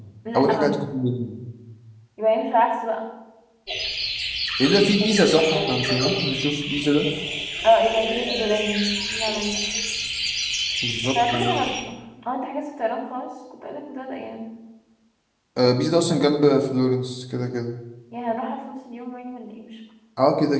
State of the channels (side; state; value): both; identical; correlation 1.00